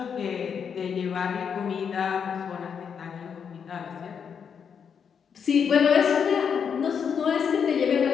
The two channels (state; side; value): quieter; right; 7.0 dB